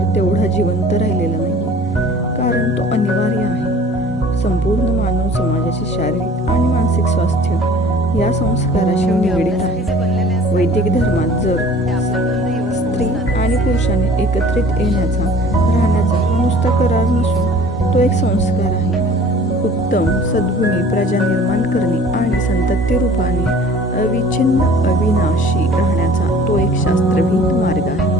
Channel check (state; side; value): normal; both; correlation 0.48